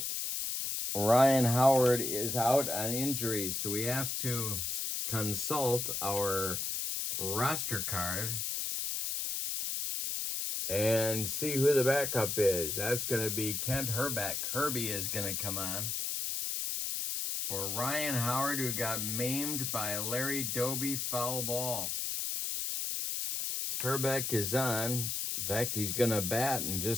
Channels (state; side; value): noise; left; hiss, 1 dB below the sound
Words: Ryan Howard is out on injury, so we have to consult our roster card and see who the backup is. That's going to be Kent Herbeck. Herbie is going to come on for Ryan Howard, who got maimed by Larry Doby foul ball. Herbeck is on. In fact, he's going to bat in